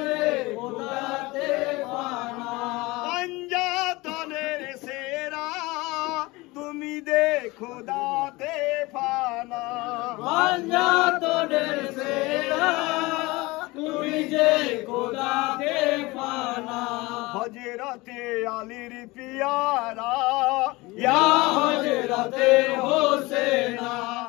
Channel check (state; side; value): quieter; right; 22.2 dB